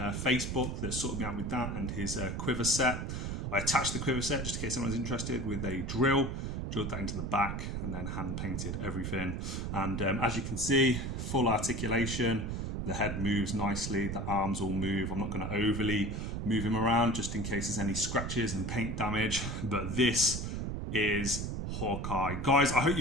that sorted me out with that, and his quiver set. I attached the quiver set just in case anyone's interested with a drilled that into the back, and then hand painted everything. And as you can see, full articulation. The head moves nicely, the arms all move. I'm not going to overly move him around just in case there's any scratches and paint damage, but this is Hawkeye. Guys, I hope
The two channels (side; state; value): right; noise; rumble, 3 dB below the sound